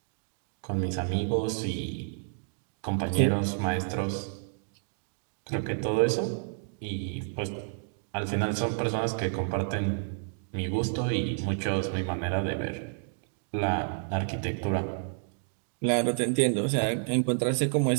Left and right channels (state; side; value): silent; left; digital silence